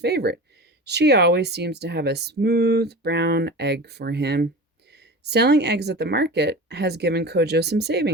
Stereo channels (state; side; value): normal; both; correlation 0.33